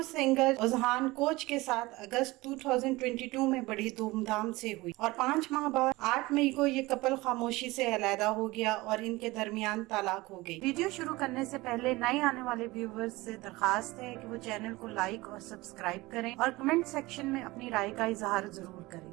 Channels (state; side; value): quieter; left; 21.0 dB